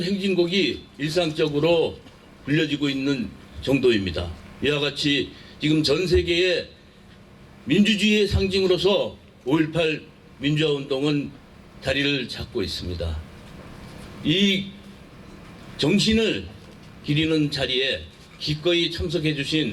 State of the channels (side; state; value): both; identical; correlation 1.00